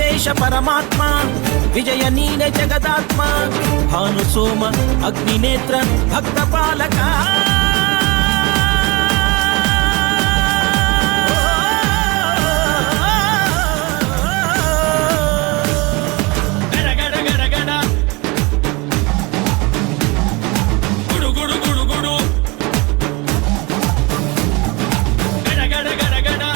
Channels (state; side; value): quieter; left; 25.9 dB